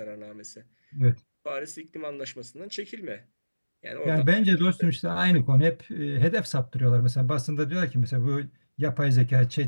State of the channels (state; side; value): inverted; both; correlation -1.00